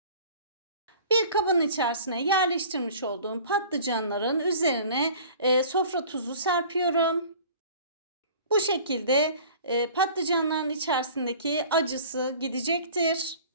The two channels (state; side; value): inverted; both; correlation -0.45